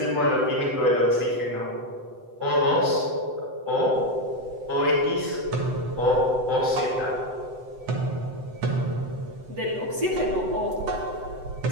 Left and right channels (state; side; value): late; left; 7.9 ms